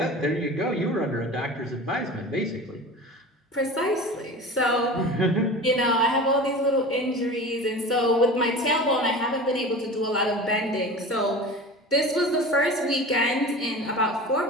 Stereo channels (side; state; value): both; normal; correlation 0.35